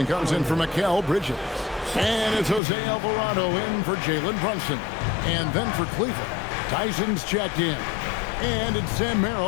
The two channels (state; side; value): drops out; right; at 2.6 s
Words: comes in for Mikal Bridges. And it's Jose Alvarado in for Jalen Brunson. And then for Cleveland, Tyson's checked in. And it's Sam